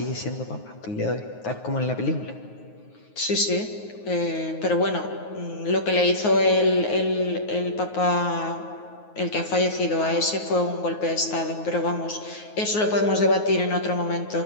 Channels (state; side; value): late; right; 9.5 ms